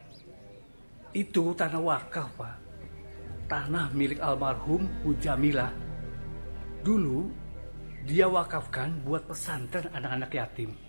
Itu tanah wakaf Pak. Tanah milik almarhum Bu Jamilah. Dulu dia wakafkan buat pesantren anak-anak yatim.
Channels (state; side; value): inverted; both; correlation -1.00